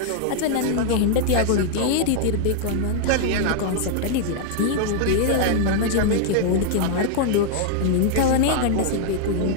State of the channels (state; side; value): different; both; correlation 0.00